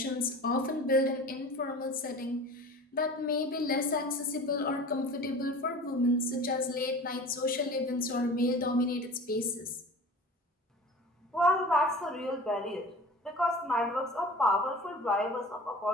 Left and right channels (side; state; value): both; normal; correlation 0.39